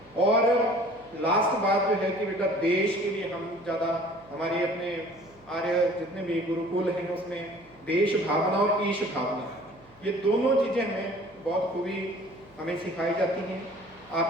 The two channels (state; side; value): noise; right; hum, 28 dB below the sound